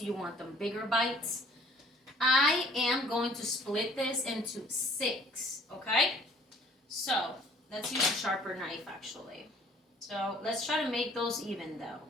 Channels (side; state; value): both; normal; correlation 0.56